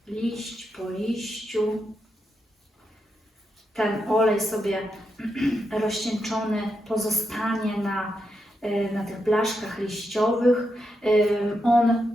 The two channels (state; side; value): normal; both; correlation 0.84